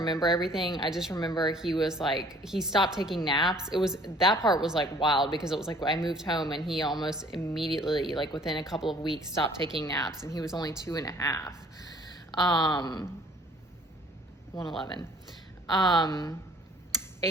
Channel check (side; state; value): both; normal; correlation 0.55